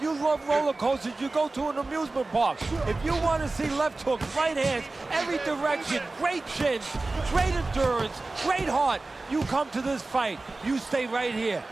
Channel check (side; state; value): left; quieter; 3.3 dB